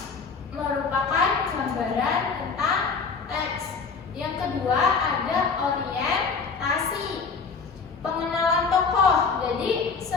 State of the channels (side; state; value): right; quieter; 5.1 dB